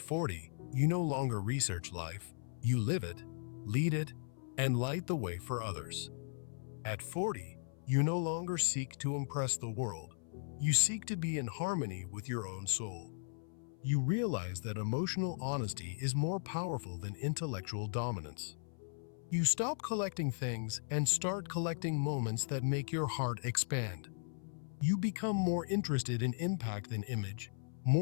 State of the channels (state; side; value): silent; right; 53 dB below the other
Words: you no longer research life. You live it, lead it, and light the way for others. At 40, you no longer seek to impress the world. You seek to be in harmony with your own soul. You realize that emotional honesty is more powerful than intellectual dominance. You stop collecting things and start collecting moments that make your heart expand. You become more interested in impact than image,